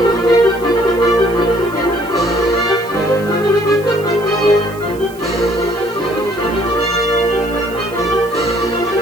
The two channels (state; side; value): noise; right; hiss, 22 dB below the sound